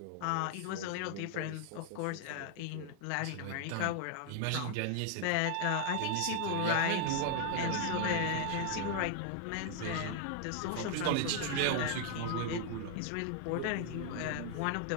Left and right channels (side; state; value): both; different; correlation 0.00